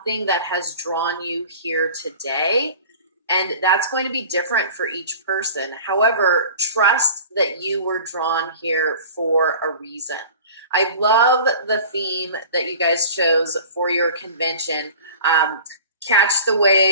that has drawn you here today. And that's going to be different for each person. However, trust that you were drawn here for a reason. I love the theme that you guys chose for your convention. Catch the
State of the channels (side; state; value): both; inverted; correlation -0.42